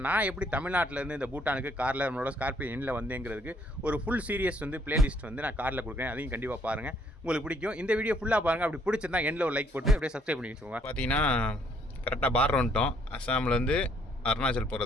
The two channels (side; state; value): both; normal; correlation 0.66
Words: நான் எப்படி தமிழ்நாட்டிலேருந்து இந்த பூட்டானுக்கு காரில் நம்மளோட ஸ்கார்பியோ எண்ணில் வந்தேங்கிறதுக்கு ஒரு ஃபுல் சீரியஸ் வந்து பிளேலிஸ்ட் வந்து நான் காரில் கொடுக்குறேன், அதையும் கண்டிப்பாக பாருங்கள், உங்களுக்கு பிடிக்கும். இந்த வீடியோ ஃபுல்லாக பாருங்கள். அப்படி பிடிச்சிருந்தா எண்ணில் ஒரு லைக் போட்டு அப்படியே சப்ஸ்கிரைப் பண்ணி வச்சுக்கோங்க. பார்த்தீங்கன்னா கரெக்டாக பார்டர் வந்துட்டோம். அஸ்ஸாம்லேருந்து அருணாச்சல்